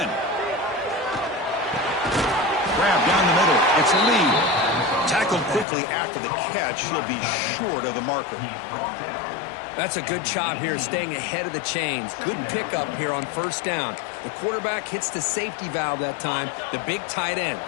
Grab down the middle. It's Lee. Tackled quickly after the catch. He'll be short of the marker. That's a good job here, staying ahead of the chains. Good pickup here on first down. The quarterback hits the safety valve that time. The big tight end.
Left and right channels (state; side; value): drops out; right; at 5.7 s